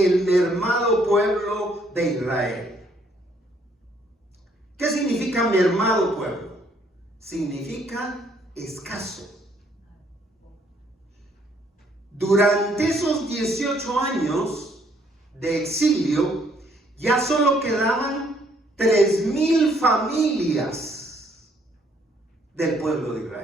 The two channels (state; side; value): normal; both; correlation 0.67